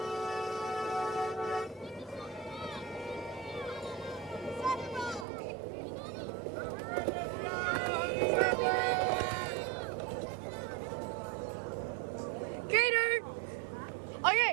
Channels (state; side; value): drops out; left; at 5.2 s